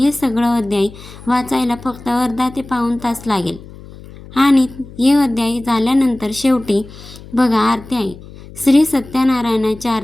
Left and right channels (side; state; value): left; noise; hum, 18 dB below the sound